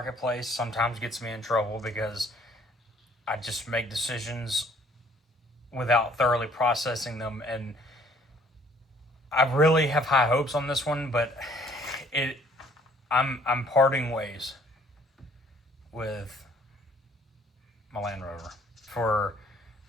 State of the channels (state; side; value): normal; both; correlation 0.60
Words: sometimes gets me in trouble because I just make decisions without thoroughly processing them. And I really have high hopes on this one, but I'm parting ways with my Land Rover for